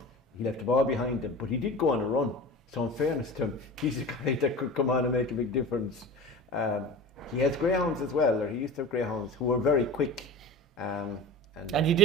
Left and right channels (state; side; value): normal; both; correlation 0.33